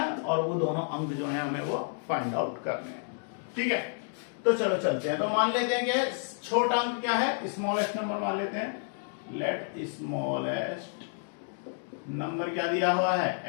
और वो दोनों अंक जो है हमें वो फाइंड आउट करने हैं। ठीक है, तो चलो चलते हैं। तो मान लेते हैं कि छोटा अंक क्या है, स्मॉलेस्ट नंबर मान लेते हैं। लेट स्मॉलेस्ट नंबर क्या दिया हुआ है,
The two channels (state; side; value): silent; right; 58 dB below the other